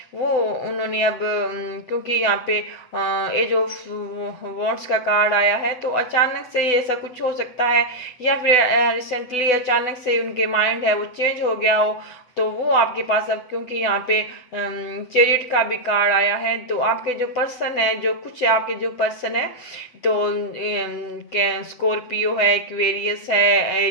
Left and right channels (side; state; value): right; late; 7.7 ms